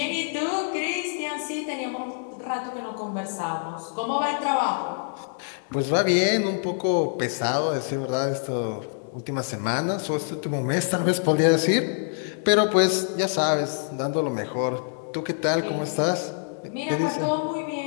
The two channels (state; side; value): silent; right; 61 dB below the other